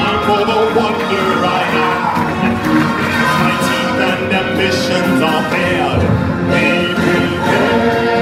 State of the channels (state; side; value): identical; both; correlation 1.00